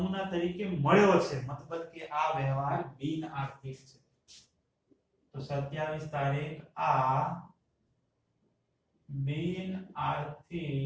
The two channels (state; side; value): identical; both; correlation 1.00